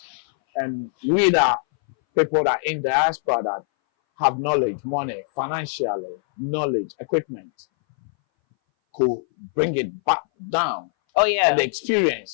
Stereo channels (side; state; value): right; silent; 60 dB below the other